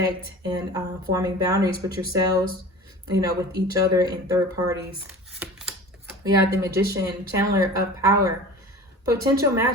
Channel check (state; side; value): normal; both; correlation 0.38